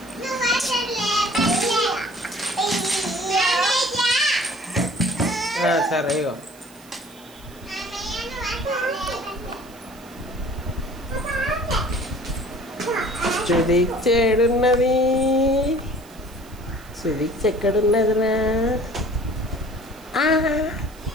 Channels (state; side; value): noise; right; hiss, 24 dB below the sound